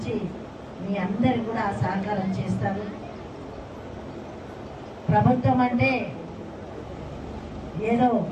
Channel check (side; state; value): both; identical; correlation 1.00